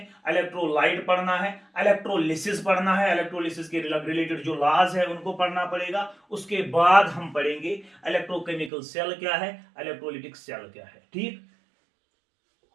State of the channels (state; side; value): drops out; left; at 8.7 s